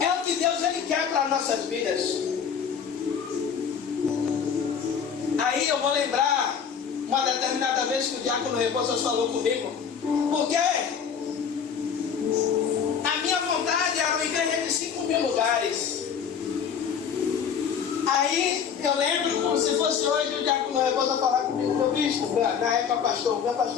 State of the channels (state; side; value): quieter; right; 7.2 dB